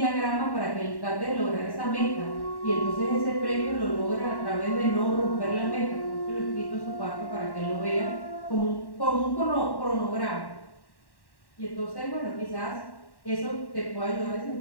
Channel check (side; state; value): right; late; 1.1 ms